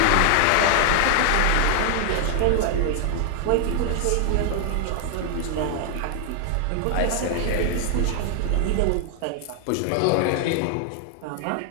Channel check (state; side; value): different; both; correlation 0.00